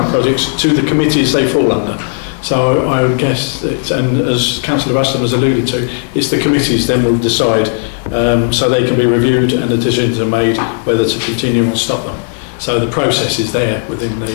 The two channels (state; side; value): silent; right; digital silence